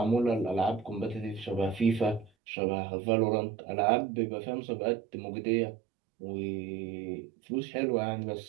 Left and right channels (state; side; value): drops out; left; at 2.3 s